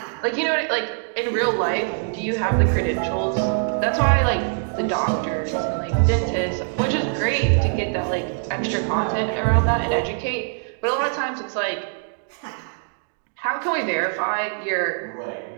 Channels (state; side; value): silent; left; digital silence